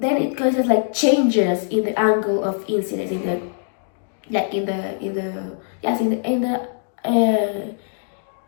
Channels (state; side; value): silent; right; digital silence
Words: it causes like changes in the angle of incidence in the